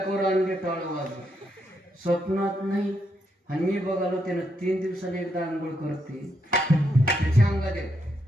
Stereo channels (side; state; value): both; normal; correlation 0.79